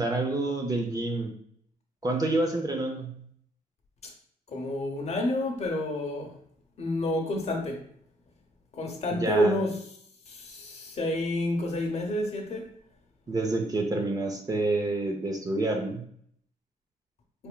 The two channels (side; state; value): both; normal; correlation 0.69